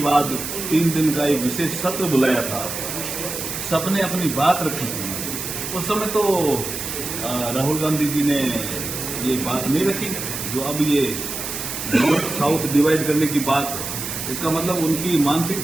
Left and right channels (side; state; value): right; noise; hiss, 6 dB below the sound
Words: बाद 3 दिन का एक विशेष सत्र बुलाया था, सबने अपनी बात रखी थी। उस समय तो राहुल गांधी जी ने ये बात नहीं रखी जो अब ये नॉर्थ साउथ डिवाइड करने की बात, इसका मतलब उनकी